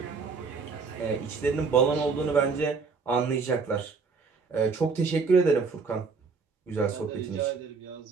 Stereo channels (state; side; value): quieter; left; 4.8 dB